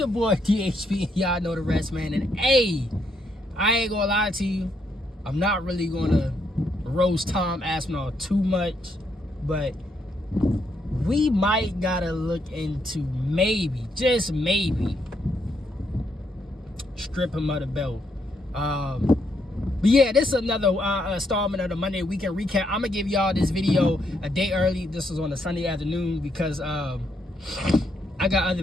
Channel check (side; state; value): both; normal; correlation 0.76